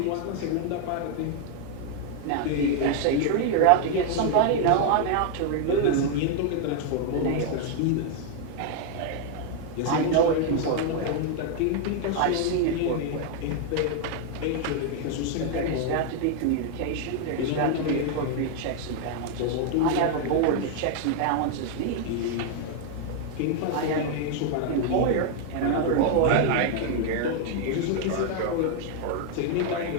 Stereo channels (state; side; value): different; both; correlation 0.00